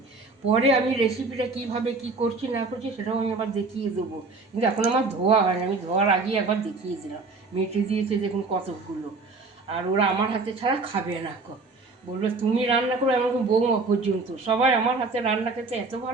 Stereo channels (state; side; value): quieter; left; 3.7 dB